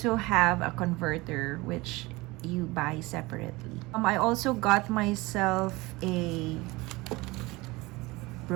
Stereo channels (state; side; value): quieter; left; 22.1 dB